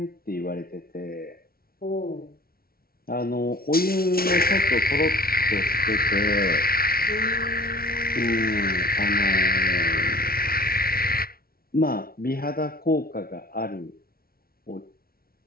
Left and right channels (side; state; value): right; late; 0.44 ms